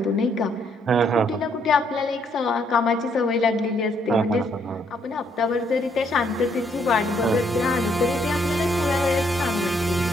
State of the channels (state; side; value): normal; both; correlation 0.70